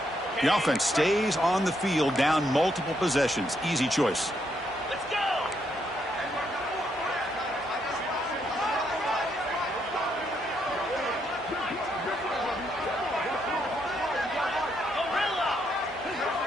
The offense stays on the field, down multiple possessions. Easy choice.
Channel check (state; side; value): normal; both; correlation 0.76